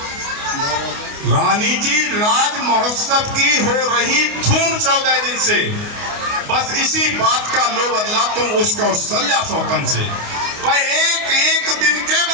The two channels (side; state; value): left; late; 28 ms